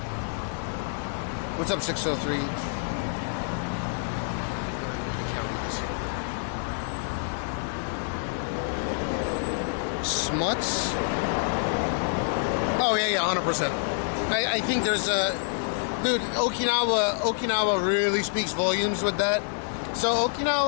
What's up, 603? I can't read this. Smuts? Oh, yeah, 100%. I think there's a... Dude, Okinawa really speaks volumes with that. So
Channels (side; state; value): right; silent; digital silence